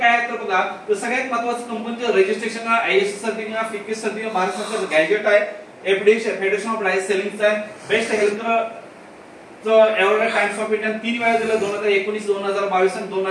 आहे तर बघा, तर सगळ्यात महत्त्वाचं कंपनीचं रजिस्ट्रेशन आहे, आयएस सर्टिफिकेट, फिकेस सर्टिफिकेट, भारत सरकारचं गॅजेट आहे, एफडीए फेडरेशन ऑफ डायरेक्ट सेलिंगचा आहे, बेस्ट हेल्थ एवढ्या टाइम्स ऑफ इंडिया 3 वेळा दिलं, 2019, 2022 आणि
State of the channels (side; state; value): both; identical; correlation 1.00